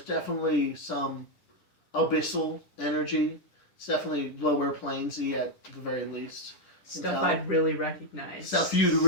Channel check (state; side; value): late; right; 10 ms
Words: definitely some abyssal energy. It's definitely lower planesy at the very least. Stuff I'd really recognize. Stuff you'd